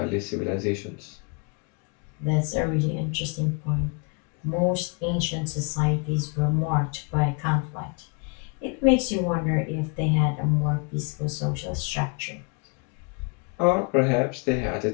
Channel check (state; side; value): quieter; right; 34.7 dB